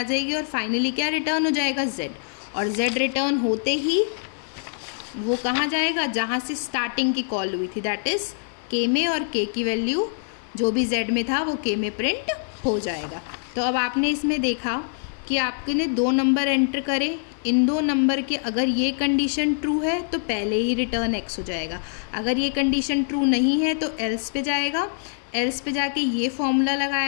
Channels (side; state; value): right; silent; 59 dB below the other